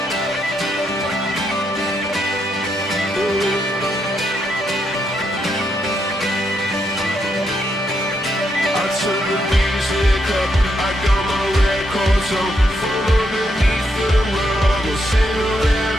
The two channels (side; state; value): both; normal; correlation 0.79